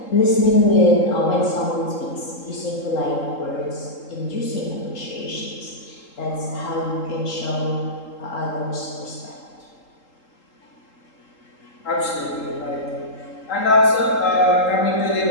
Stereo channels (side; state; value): right; late; 3.8 ms